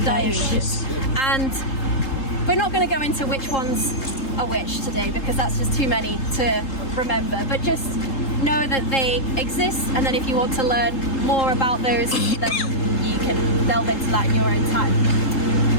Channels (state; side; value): late; right; 3.8 ms